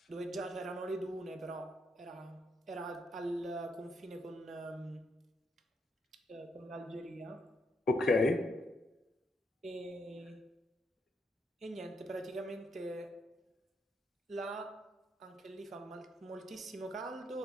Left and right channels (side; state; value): both; normal; correlation 0.77